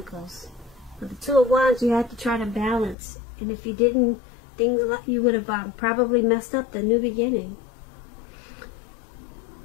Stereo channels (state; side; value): drops out; right; at 3.0 s